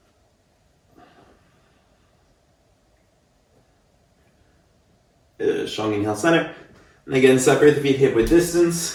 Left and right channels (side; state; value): both; identical; correlation 1.00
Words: Good. Strong inhale, center. And again, separate the feet hip width